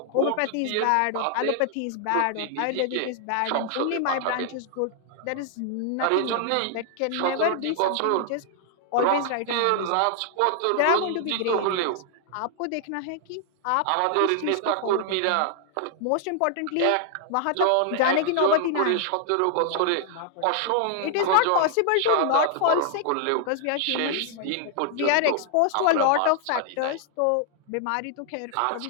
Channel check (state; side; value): different; both; correlation 0.00